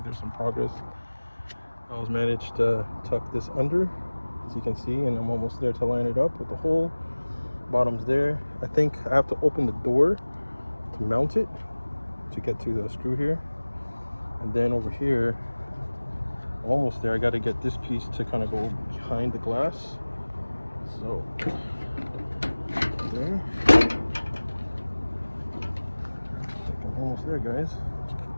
there's some progress. I was managed to tuck this under, as you can see, and I'm almost there to line it up with the hole. Bottom's there. I think I have to open the door to mount it, to get to the screw here. And then over here, I'm almost there. I got to get this piece to kind of go behind the glass. So there. I think I'm almost there, guys.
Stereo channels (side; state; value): both; inverted; correlation -1.00